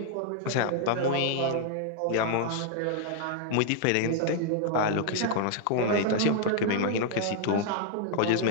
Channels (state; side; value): different; both; correlation 0.00